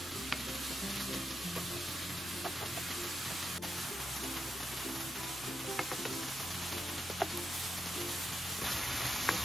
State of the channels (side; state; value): left; noise; hum, 25 dB below the sound